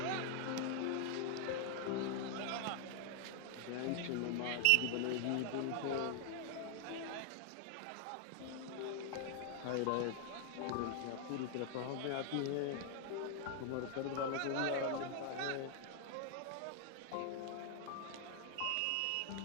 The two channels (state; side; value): different; both; correlation 0.00